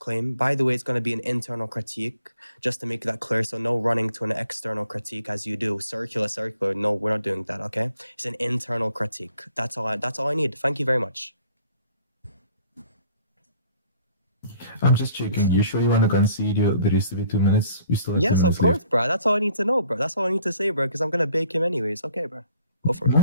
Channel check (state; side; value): inverted; both; correlation -0.59